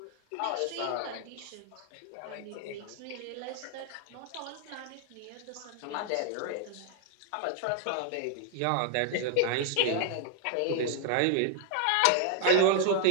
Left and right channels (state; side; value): different; both; correlation 0.00